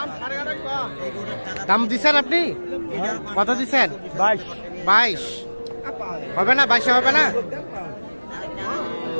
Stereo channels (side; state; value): both; inverted; correlation -1.00